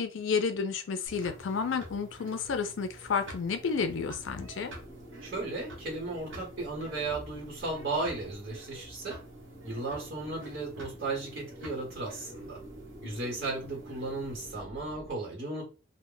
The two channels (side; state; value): both; normal; correlation 0.18